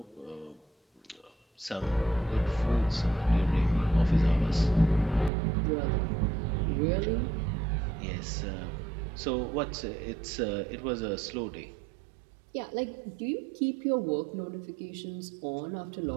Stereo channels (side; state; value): left; drops out; at 5.3 s